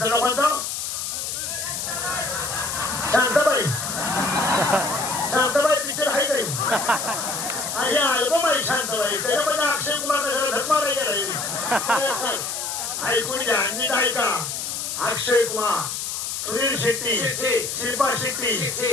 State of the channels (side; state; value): left; noise; hiss, 4 dB below the sound